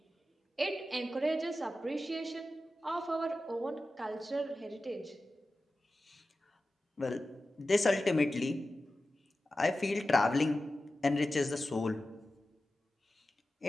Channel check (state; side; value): normal; both; correlation 0.94